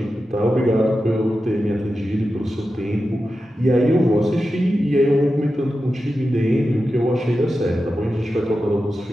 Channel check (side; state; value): both; normal; correlation 0.91